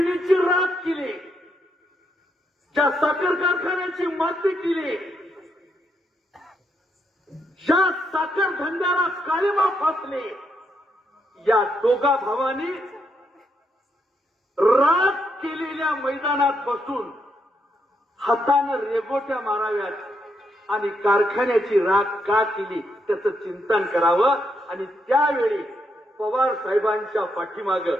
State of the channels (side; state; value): both; normal; correlation 0.78